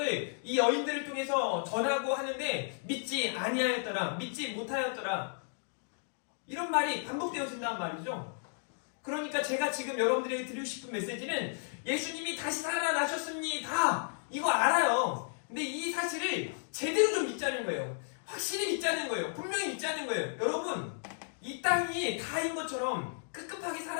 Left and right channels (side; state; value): right; silent; digital silence